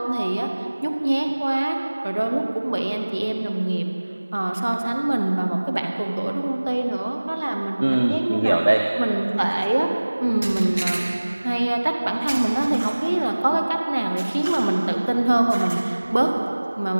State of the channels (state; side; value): inverted; both; correlation -1.00